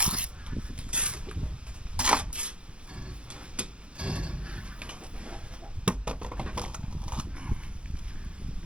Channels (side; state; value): left; late; 0.058 ms